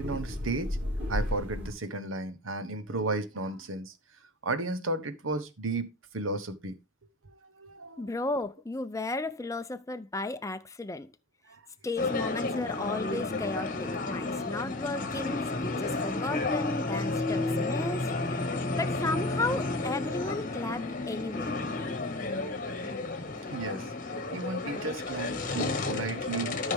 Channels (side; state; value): both; normal; correlation 0.31